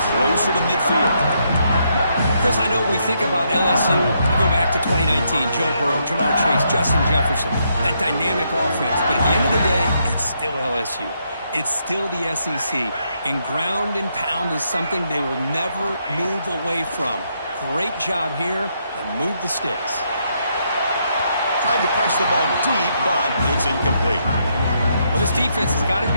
closer to midfield. Chris, I know we think about LSU. You go back to 2019, Joe Burrow, Jamar Chase, Justin Jefferson, that dynamic offense. But at the end of the day, it's still LSU. It's still the SEC. And ground and pound is something they will never move away from. Great job here, and move the sticks. Tried to press the ball deep, but it's incomplete. Well, this defense has got to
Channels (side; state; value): both; inverted; correlation -0.76